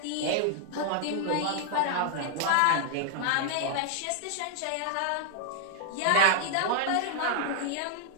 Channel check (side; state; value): both; different; correlation -0.01